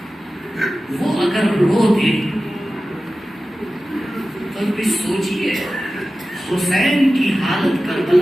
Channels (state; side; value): normal; both; correlation 0.95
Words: وہ اگر رو دے تو بھی سوچئے حسین کی حالت